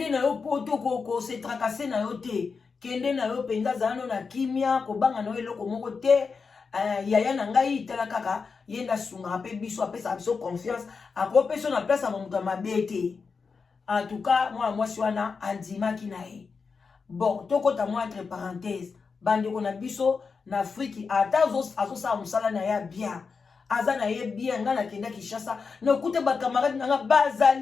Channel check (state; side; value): quieter; right; 5.1 dB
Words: poto ko se tracasser na yo te kende na yo penza zano na kimia kobanga na eloko moko te yaya na ngai tala kaka yenda sunga pe biso apesa biso confiance akopesa na place ya moto mabe te en tout cas moi wana andimaki na ye bon tokota moi entre parenthèse bandeko na biso na Afrique ata azosala mosala na ya bien aza na ye bien nga na kenda Kinshasa na kute ba camarade nga